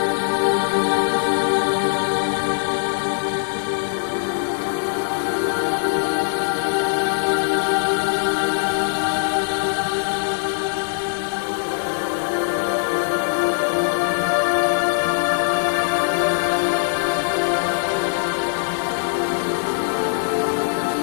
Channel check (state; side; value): silent; right; digital silence